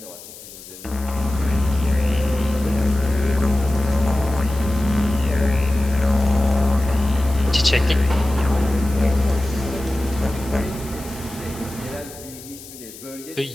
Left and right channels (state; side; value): noise; left; hiss, 17 dB below the sound